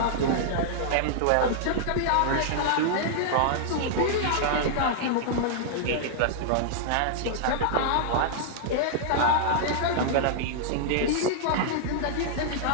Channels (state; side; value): different; both; correlation -0.01